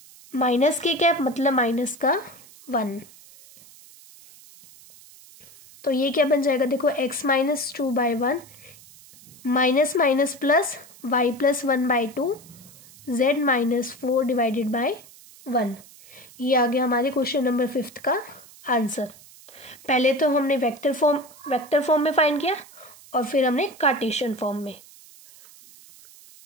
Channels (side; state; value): right; noise; hiss, 22 dB below the sound